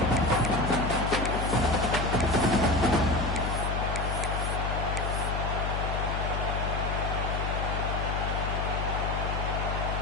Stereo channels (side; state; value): left; noise; hum, 1 dB below the sound